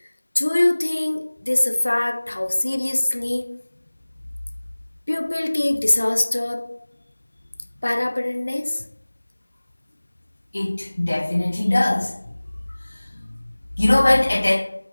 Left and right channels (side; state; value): both; inverted; correlation -1.00